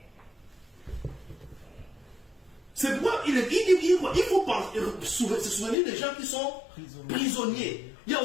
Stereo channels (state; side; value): drops out; right; at 5.8 s